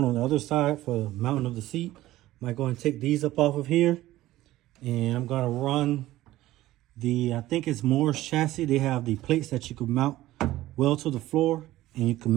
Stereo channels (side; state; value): left; quieter; 15.8 dB